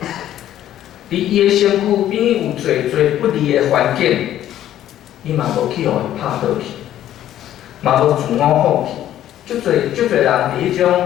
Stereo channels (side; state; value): right; quieter; 12.1 dB